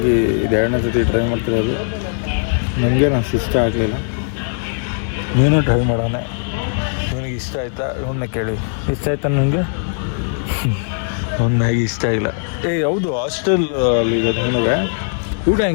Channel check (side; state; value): right; silent; digital silence